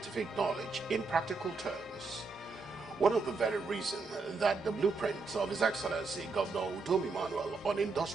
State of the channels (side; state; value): left; quieter; 4.0 dB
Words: knowledge in practical terms. One of the very reasons that the blueprint of His Excellency Governor Udom on